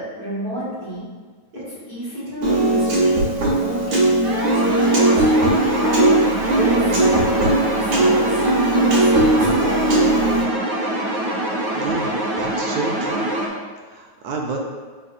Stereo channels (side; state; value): left; late; 9.4 ms